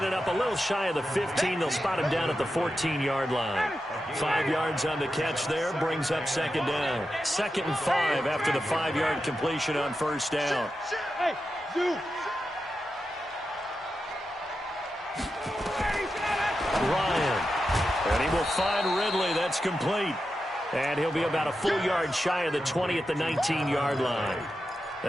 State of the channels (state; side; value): normal; both; correlation 0.89